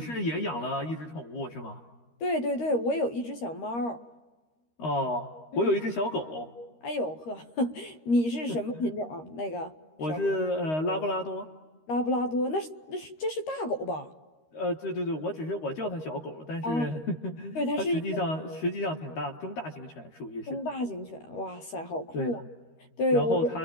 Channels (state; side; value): late; right; 13 ms